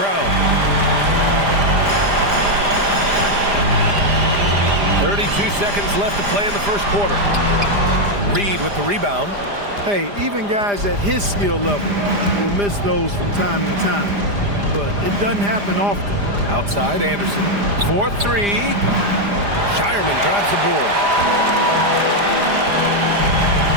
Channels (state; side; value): late; left; 5.0 ms